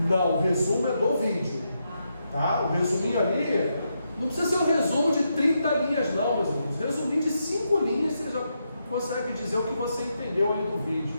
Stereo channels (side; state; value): both; inverted; correlation -0.83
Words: Não, o resumo é do vídeo, tá? O resuminho ali, não precisa ser um resumo de 30 linhas não, meus irmãos. Resuminho de 5 linhas, você já consegue dizer o que você entendeu ali do vídeo.